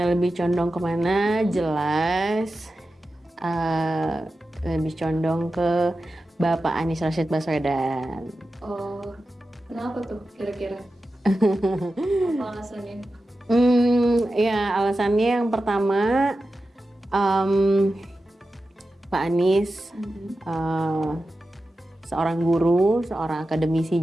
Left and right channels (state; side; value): normal; both; correlation 0.92